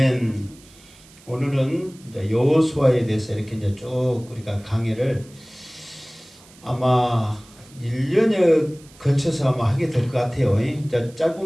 오늘은 이제 여호수아에 대해서 이렇게 이제 쭉 우리가 강의를 아마 1년에 거쳐서 아마 하게 될 것 같아요. 이제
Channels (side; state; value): right; noise; hiss, 25 dB below the sound